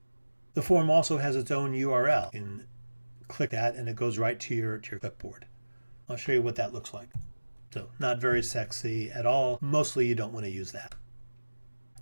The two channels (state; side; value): inverted; both; correlation -1.00